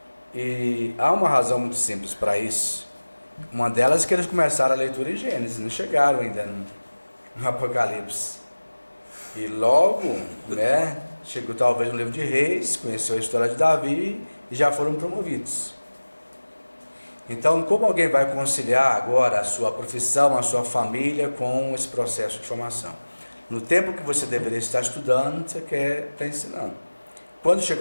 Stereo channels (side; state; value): both; inverted; correlation -1.00